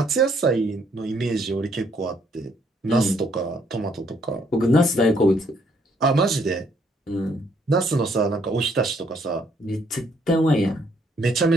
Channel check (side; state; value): both; normal; correlation 0.69